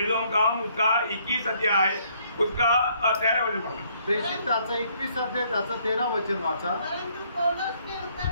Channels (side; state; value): both; inverted; correlation -0.67